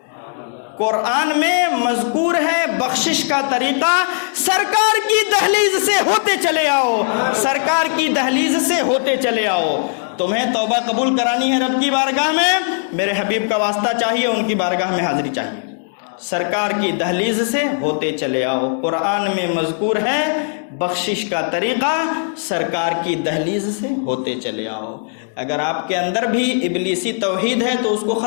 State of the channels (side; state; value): right; silent; digital silence